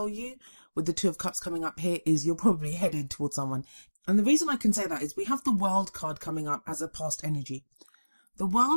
you with the Two of Cups coming up here is you're probably headed towards someone. And the reason I can say that is we have the World card coming up as a past energy. The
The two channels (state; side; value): inverted; both; correlation -1.00